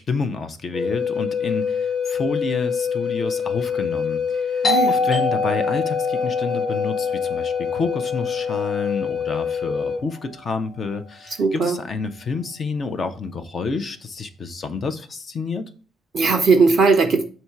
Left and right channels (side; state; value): both; normal; correlation 0.71